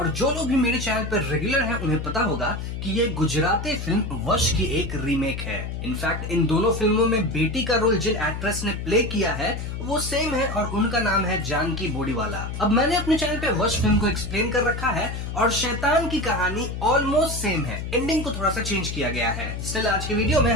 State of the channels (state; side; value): noise; left; hum, 5 dB below the sound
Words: जो लोग भी मेरे चैनल पर रेगुलर हैं उन्हें पता होगा कि ये गुजराती फिल्म वश की एक रीमेक है। इनफैक्ट इन दोनों फिल्मों में बेटी का रोल जिन एक्ट्रेस ने प्ले किया है वो सेम है और उनका नाम है जानकी बोडीवाला। अब मैंने अपने चैनल पे वश फिल्म को एक्सप्लेन कर रखा है और शैतान की कहानी ऑलमोस्ट सेम है, एंडिंग को थोड़ा सा चेंज किया गया है। स्टिल आज की वीडियो में